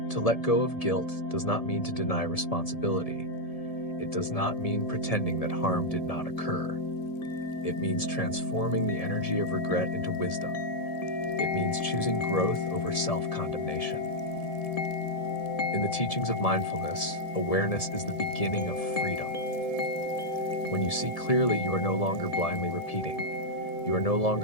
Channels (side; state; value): right; late; 1.7 ms